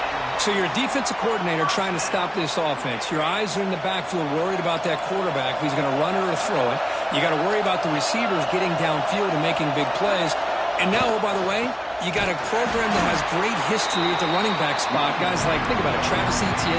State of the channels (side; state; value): both; identical; correlation 1.00